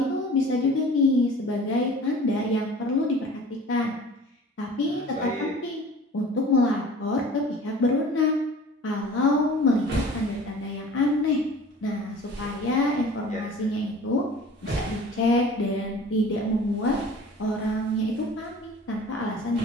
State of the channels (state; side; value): normal; both; correlation 0.44